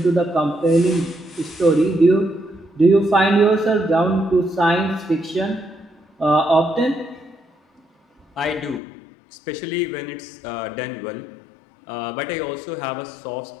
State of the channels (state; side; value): drops out; right; at 8.8 s